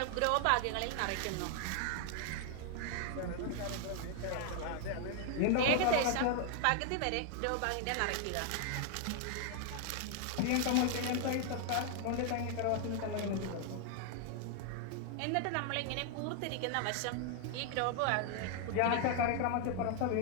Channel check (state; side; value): different; both; correlation 0.00